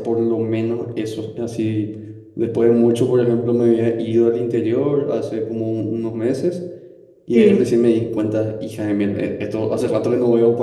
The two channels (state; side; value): identical; both; correlation 1.00